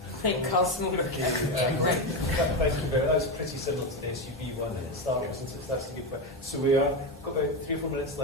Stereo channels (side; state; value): both; normal; correlation 0.13